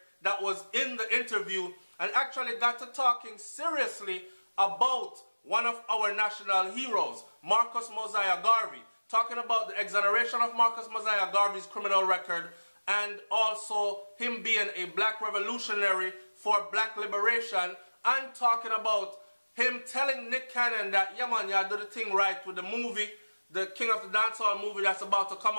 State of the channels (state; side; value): inverted; both; correlation -1.00